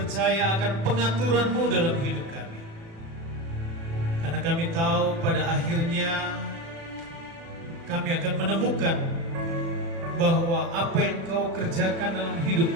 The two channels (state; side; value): late; left; 36 ms